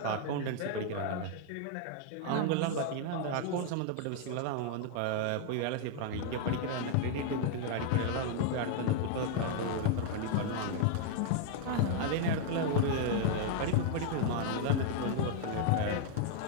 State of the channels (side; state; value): both; different; correlation 0.00